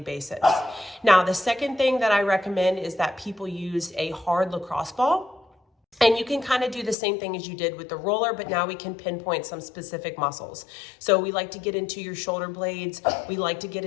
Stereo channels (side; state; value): right; drops out; at 7.0 s